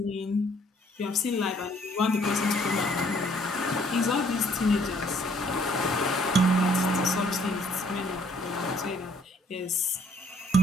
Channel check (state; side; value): normal; both; correlation 0.62